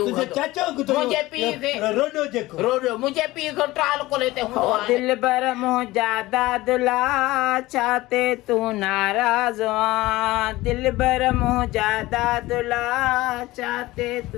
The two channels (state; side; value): quieter; right; 18.7 dB